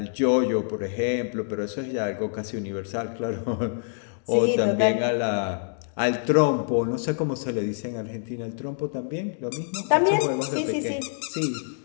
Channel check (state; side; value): silent; right; digital silence